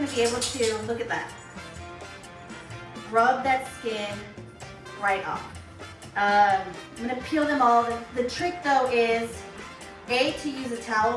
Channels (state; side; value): identical; both; correlation 1.00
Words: be able to, look at that. Rub that skin right off. I'm gonna peel them all. The trick though is, A, to use a towel